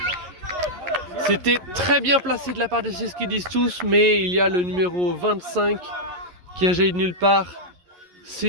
C'était très bien placé de la part de ceux qui disent tous. Mais il y a le numéro 25 qui a jailli de nulle part.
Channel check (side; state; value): left; late; 11 ms